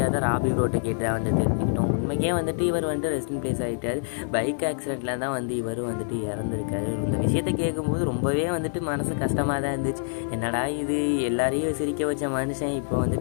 தான் ராபி ப்ரோட்டை கேட்டு வந்து தெரிஞ்சுக்கிட்டோம். உண்மைக்கே வந்துட்டு இவர் வந்துட்டு ரெஸ்ட் இன் பிளேஸ் ஆகிட்டார். பைக் ஆக்சிடெண்ட்டில் தான் வந்து இவரும் வந்துட்டு இறந்துருக்காரு. இந்த விஷயத்தை கேட்கும்போது ரொம்பவே வந்துட்டு மனசு கஷ்டமாக தான் இருந்துச்சு. என்னடா இது, எல்லாரையும் சிரிக்க வச்ச மனுஷன் இப்போ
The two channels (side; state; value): right; silent; digital silence